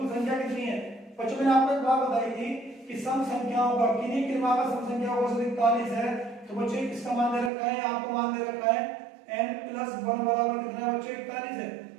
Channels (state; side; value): drops out; left; at 7.5 s